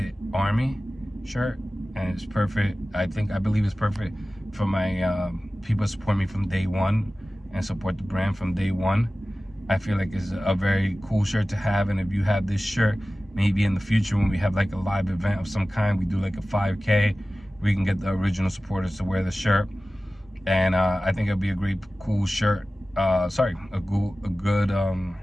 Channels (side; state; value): both; normal; correlation 0.96